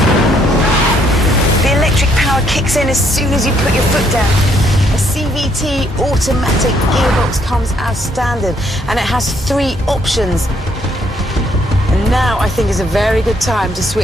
The electric power kicks in as soon as you put your foot down. A CVT automatic gearbox comes as standard, and it has 3 options. And now I think is a very good time to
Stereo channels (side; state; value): both; normal; correlation 0.69